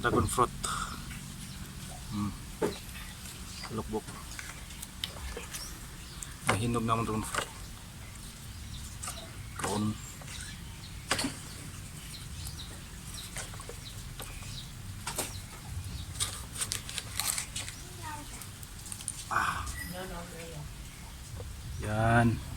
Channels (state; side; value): identical; both; correlation 1.00